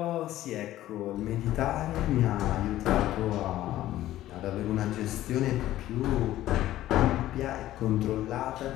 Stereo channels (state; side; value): quieter; right; 14.3 dB